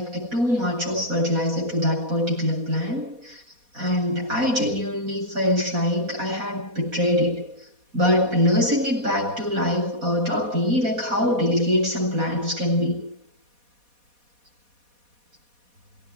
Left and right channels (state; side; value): late; left; 4.2 ms